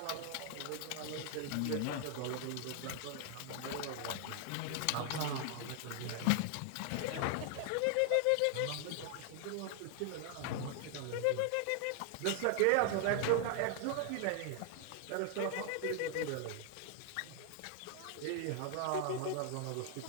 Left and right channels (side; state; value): both; different; correlation 0.00